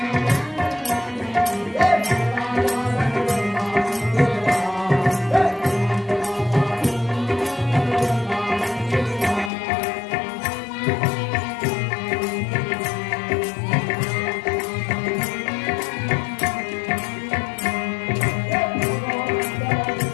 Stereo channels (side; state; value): right; drops out; at 9.5 s